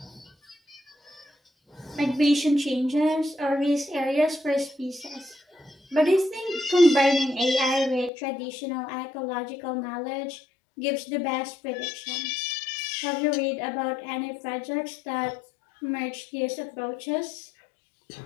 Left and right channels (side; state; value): right; drops out; at 8.1 s